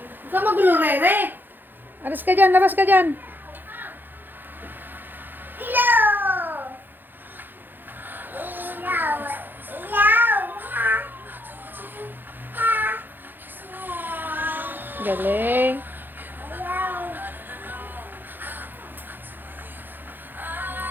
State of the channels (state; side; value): late; left; 0.092 ms